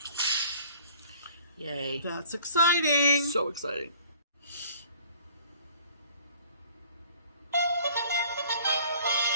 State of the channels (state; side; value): inverted; both; correlation -0.53